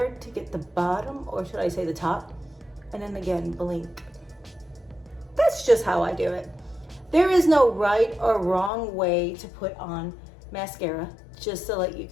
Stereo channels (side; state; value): right; drops out; at 8.7 s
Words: to get the bottom, or should I say the top? And then again, blink. That's just how I do it. There is no right or wrong way to put on mascara, just to let you